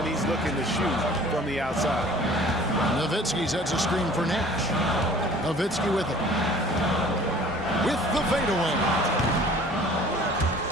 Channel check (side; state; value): both; normal; correlation 0.49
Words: he's looking to shoot from the outside? Nowitzki sets a screen for Nash. Nowitzki with it. With the fadeaway.